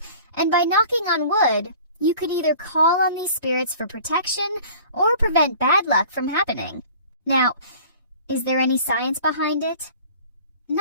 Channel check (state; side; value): inverted; both; correlation -0.46